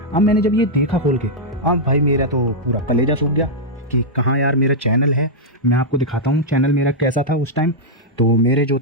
अब मैंने जब ये देखा खोल के, अब भाई मेरा तो पूरा कलेजा सूख गया कि कहाँ यार मेरा चैनल है। मैं आपको दिखाता हूँ चैनल मेरा कैसा था उस टाइम। तो मेरे जो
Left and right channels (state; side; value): normal; both; correlation -0.06